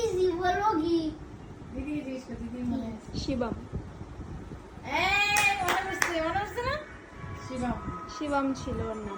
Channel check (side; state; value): both; identical; correlation 1.00